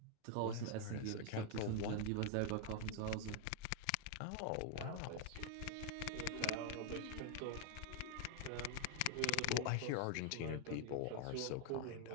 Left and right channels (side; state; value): both; different; correlation 0.00